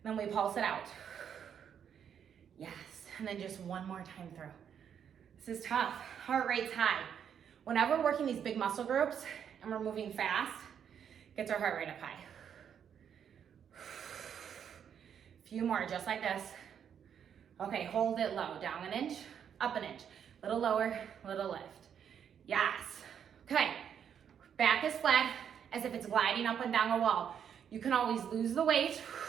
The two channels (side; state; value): left; quieter; 8.3 dB